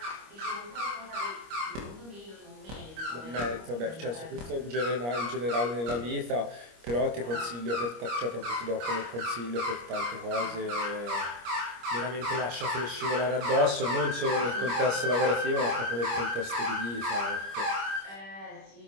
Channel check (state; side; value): late; left; 25 ms